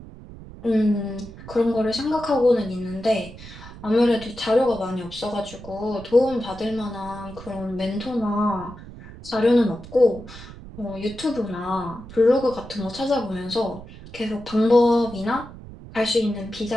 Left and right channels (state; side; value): noise; right; rumble, 16 dB below the sound